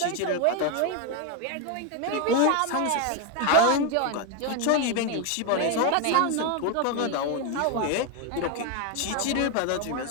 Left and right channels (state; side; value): different; both; correlation 0.02